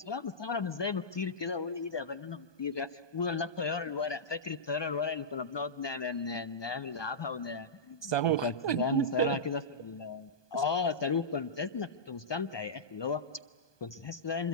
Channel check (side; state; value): right; late; 1.2 ms